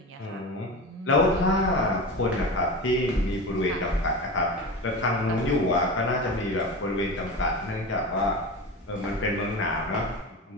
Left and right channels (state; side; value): normal; both; correlation 0.27